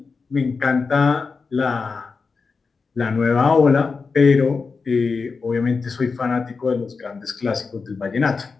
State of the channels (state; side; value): quieter; right; 4.7 dB